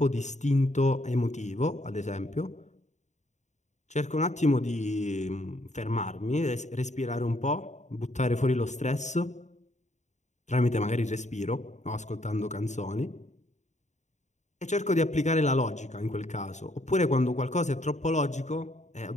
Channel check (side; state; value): right; late; 0.34 ms